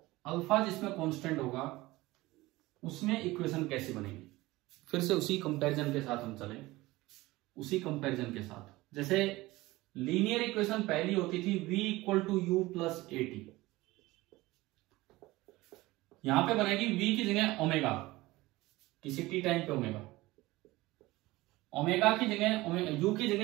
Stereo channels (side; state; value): left; quieter; 19.5 dB